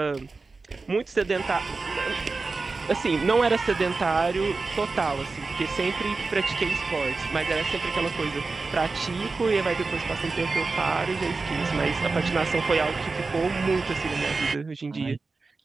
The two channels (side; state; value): left; quieter; 4.0 dB